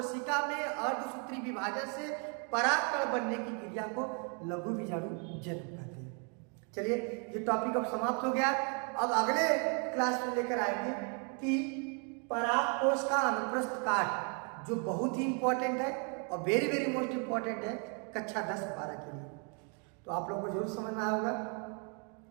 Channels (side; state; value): left; quieter; 37.7 dB